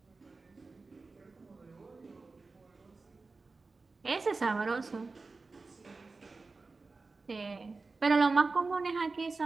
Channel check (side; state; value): left; quieter; 3.9 dB